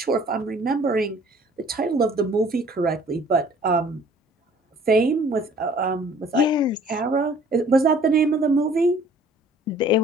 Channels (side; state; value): both; normal; correlation 0.54